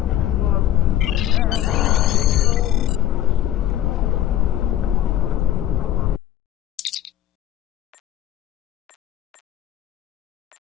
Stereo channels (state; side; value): quieter; right; 12.2 dB